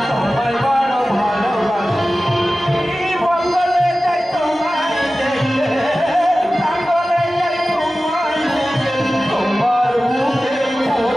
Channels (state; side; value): normal; both; correlation 0.96